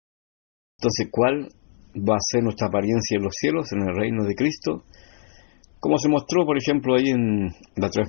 Entonces, ¿cuál va a ser nuestra apariencia en los cielos, en el reino de Cristo? Como se mostró, por ejemplo, ahí en la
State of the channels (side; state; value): right; silent; digital silence